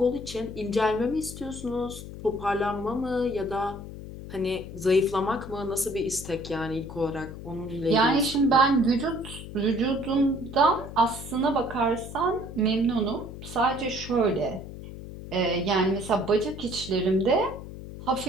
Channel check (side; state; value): left; noise; hum, 12 dB below the sound